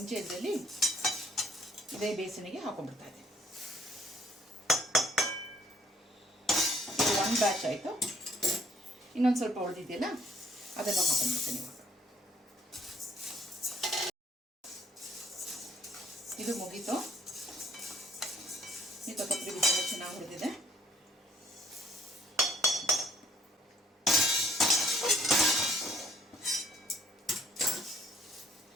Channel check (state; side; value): normal; both; correlation 0.64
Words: ಇದರಲ್ಲಿ ಇದೇ ಬೇಸನಿಗೆ ಹಾಕೊಂಡ್ಬಿಡ್ತಾ ಇದೆ. ಇದು 1 ಬ್ಯಾಚ್ ಆಯಿತು. ಇನ್ನೊಂದು ಸ್ವಲ್ಪ ಉಳಿದಿದೆಯಲ್ಲ ಅದನ್ನು ಹಾಕೊಂಡ್ಬಿಡ್ತೀನಿ ಇವಾಗ. ಇದು ಮುಗೀತು. ಈ ಕೊತ್ತಂಬರಿ ಬೀಜ ಚೆನ್ನಾಗಿ ಹುರಿದಿದೆ.